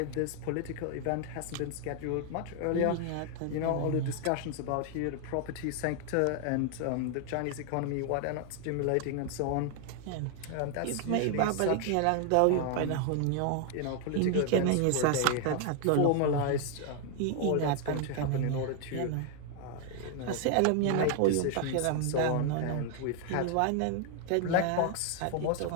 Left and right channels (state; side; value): different; both; correlation 0.00